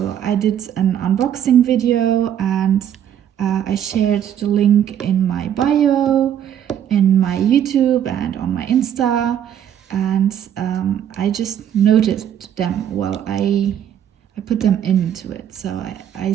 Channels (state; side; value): quieter; left; 9.9 dB